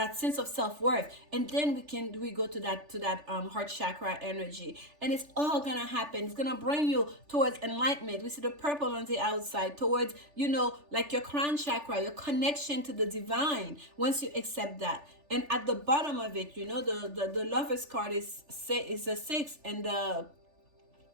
sense of self-worth, and then we go to that heart chakra energy, and it's all gonna happen. It's gonna bring you towards enlightenment. We see the purple on the outside, towards, you know, like your crown chakra, your connection to the divine, once you accept that. And at the bottom of it, you know, the Lovers card is a 6, and the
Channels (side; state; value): left; late; 3.4 ms